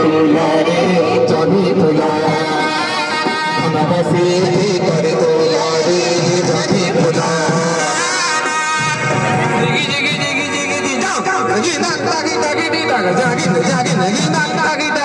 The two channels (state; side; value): identical; both; correlation 1.00